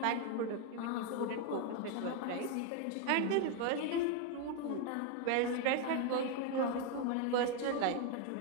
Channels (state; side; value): different; both; correlation 0.01